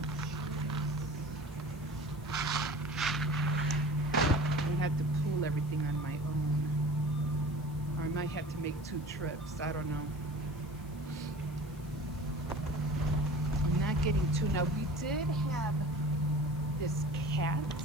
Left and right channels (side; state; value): left; noise; hiss, 24 dB below the sound